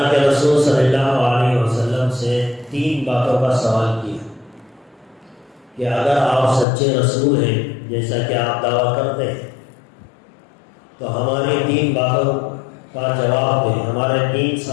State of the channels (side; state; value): right; drops out; at 6.7 s